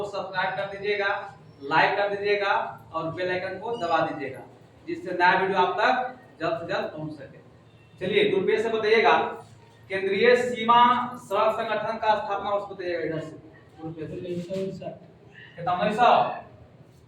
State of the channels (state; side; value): identical; both; correlation 1.00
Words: सब्सक्राइब कर दीजिएगा, लाइक कर दीजिएगा और बेल आइकन को दबा दीजिएगा, जिससे नया वीडियो आप तक जल्द से जल्द पहुंच सके। चलिए गुरुपेश से बताइएगा, केंद्रीय सीमा सड़क संगठन का स्थापना वर्ष बताइएगा। इधर से कितना 1900